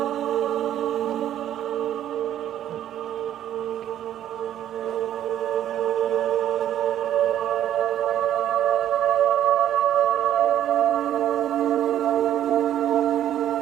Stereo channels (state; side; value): quieter; left; 11.2 dB